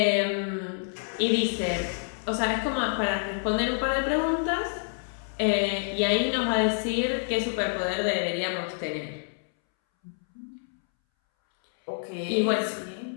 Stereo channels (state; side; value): silent; right; 60 dB below the other